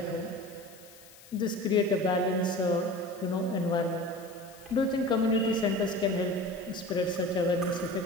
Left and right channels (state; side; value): noise; left; hiss, 22 dB below the sound